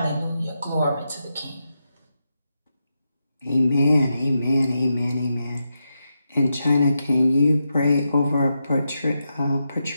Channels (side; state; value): both; inverted; correlation -0.87